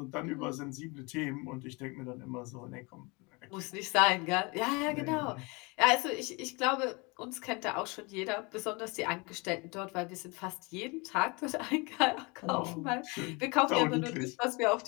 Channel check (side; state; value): right; quieter; 28.0 dB